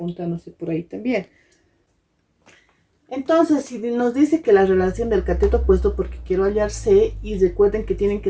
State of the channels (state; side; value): identical; both; correlation 1.00